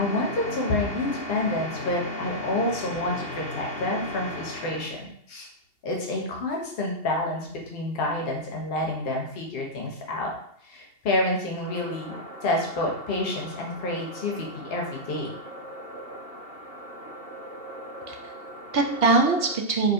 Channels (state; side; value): late; right; 2.8 ms